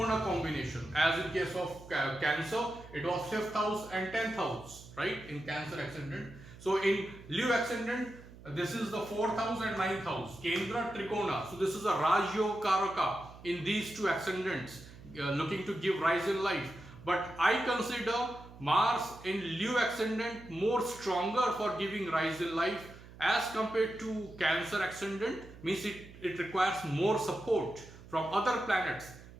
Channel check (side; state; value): right; noise; hum, 18 dB below the sound